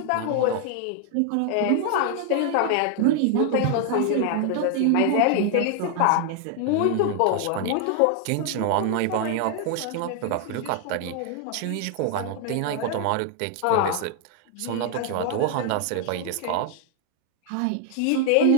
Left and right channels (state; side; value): different; both; correlation 0.00